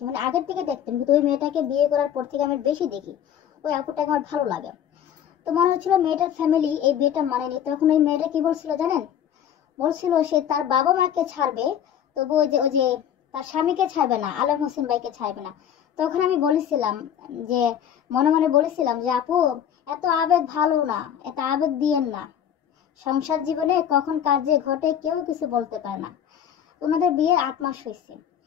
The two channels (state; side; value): quieter; right; 9.5 dB